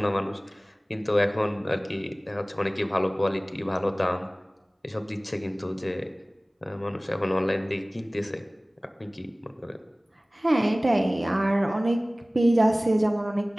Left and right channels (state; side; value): normal; both; correlation 0.98